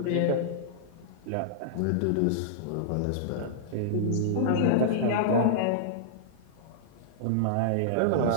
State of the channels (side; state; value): both; different; correlation -0.02